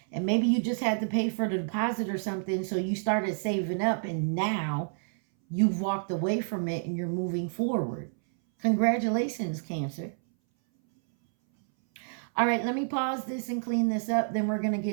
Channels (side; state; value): left; silent; 59 dB below the other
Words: And maybe you just had to pay for the deposit or something. So you started saving up and now you've walked away from it and you're moving forward. Congratulations, Cancer. All right, let me pause this and clean this up. Then we're going to